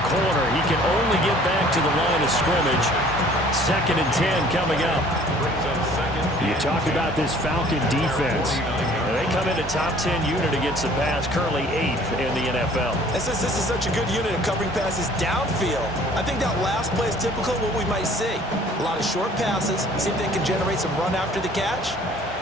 He can only get back to the line of scrimmage. 2nd and 10 coming up. You talk about this Falcon defense. They come in a top 10 unit against the pass, currently 8th in the NFL. And since this is such a good unit of covering passes downfield, I think that last play is typical of what we might see. A lot of short passes, see if they can generate some run after the catch,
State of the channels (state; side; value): normal; both; correlation 0.54